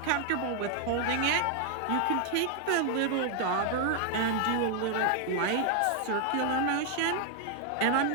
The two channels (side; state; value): both; different; correlation 0.00